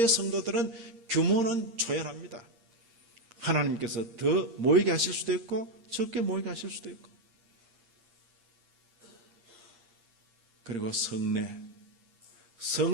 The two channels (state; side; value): late; left; 8.6 ms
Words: 성도들은 규모는 초연합니다. 하나님께서 더 모이게 하실 수도 있고 적게 모이게 하실 수도 있고. 그리고